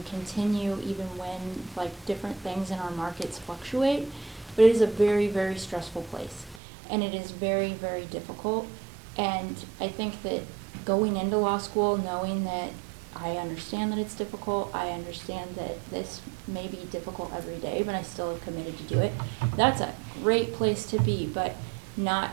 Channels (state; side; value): drops out; left; at 6.6 s